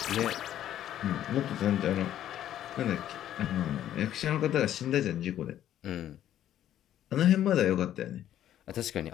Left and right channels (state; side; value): quieter; right; 11.6 dB